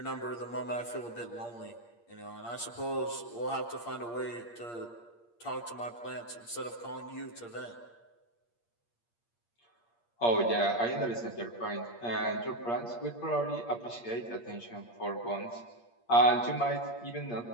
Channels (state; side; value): late; right; 8.6 ms